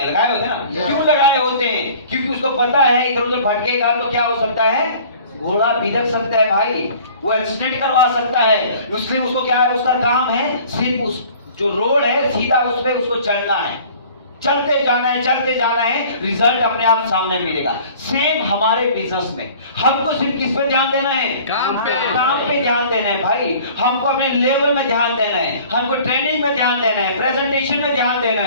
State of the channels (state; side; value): inverted; both; correlation -0.49